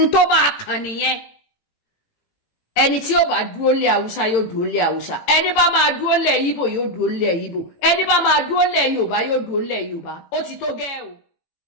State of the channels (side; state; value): right; late; 18 ms